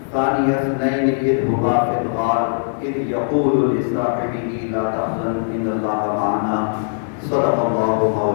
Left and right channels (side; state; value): right; silent; digital silence